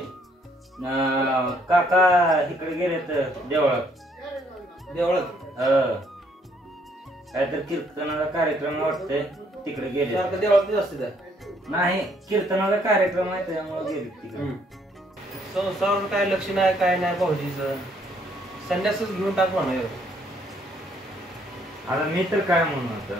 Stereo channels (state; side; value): normal; both; correlation 0.67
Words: काका इकडे गेलेत देवळात. देवळात काहीतरी कीर्तनाचा कार्यक्रम वाटतंय, तिकडे गेले. सारखं देवळात असते. नाही, कीर्तनाचा कार्यक्रम आहे त्यामुळे गेले तिकडे. संसारावर काय लक्ष नाही, काय नाही भाऊजीचं. संन्यासच घेऊन टाक म्हणा. आता मी तर काय म्हणून